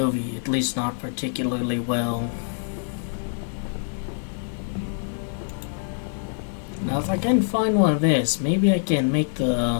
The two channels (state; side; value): silent; right; digital silence